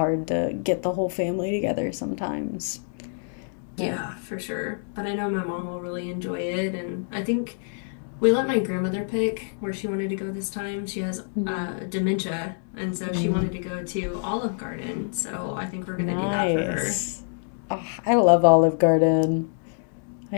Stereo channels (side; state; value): right; silent; digital silence